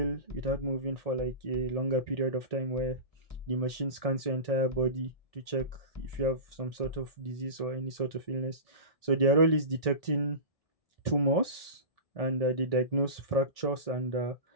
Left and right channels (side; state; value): right; late; 1.6 ms